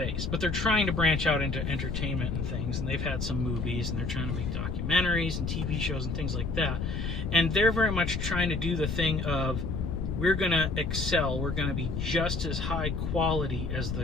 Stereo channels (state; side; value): noise; left; rumble, 2 dB below the sound